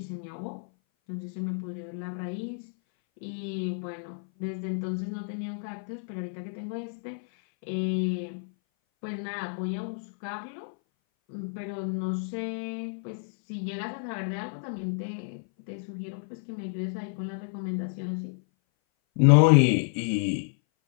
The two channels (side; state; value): right; silent; 57 dB below the other